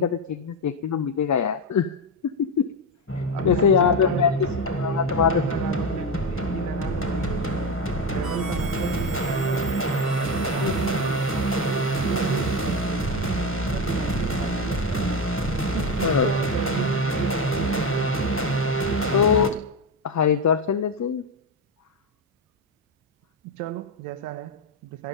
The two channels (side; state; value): both; normal; correlation 0.14